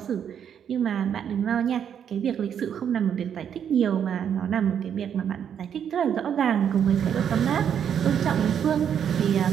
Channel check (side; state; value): left; quieter; 8.5 dB